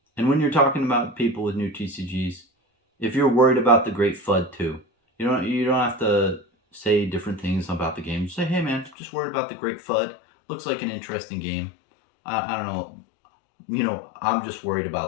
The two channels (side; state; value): right; drops out; at 9.0 s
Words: And when you're talking about people with new TCGs, if you're worried about the great FUD too, you don't have to say different things about the game. Just say, hey man, just worried about the great FUD. Looks like an interesting game. I don't know. I'm just worried